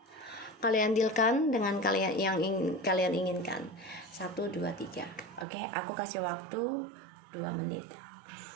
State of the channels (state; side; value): drops out; left; at 5.5 s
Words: Kalian dealkan dengan kalian yang kalian inginkan. 1, 2, 3. Oke, aku kasih waktu 2 menit.